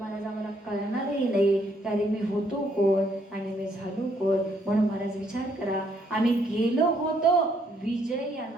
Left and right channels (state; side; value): normal; both; correlation 0.70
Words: आम्हाला कळणारही नाही त्याने मी होतो कोण आणि मी झालो कोण. म्हणून महाराज विचार करा, आम्ही गेलो होतो विजय या